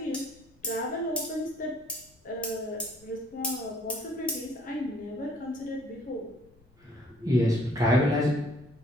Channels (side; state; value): left; noise; rumble, 30 dB below the sound